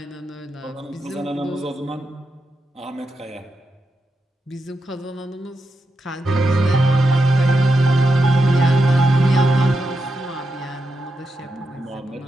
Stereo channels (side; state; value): both; normal; correlation 0.86